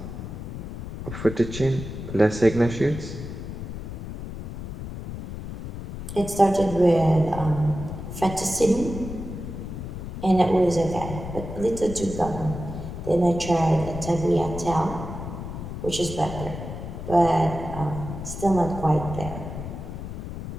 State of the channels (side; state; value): left; noise; rumble, 8 dB below the sound